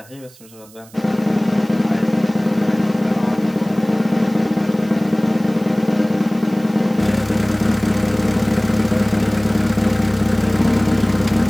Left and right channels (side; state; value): right; noise; hiss, 24 dB below the sound